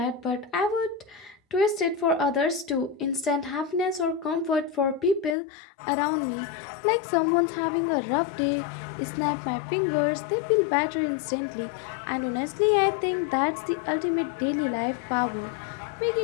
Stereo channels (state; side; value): drops out; right; at 5.4 s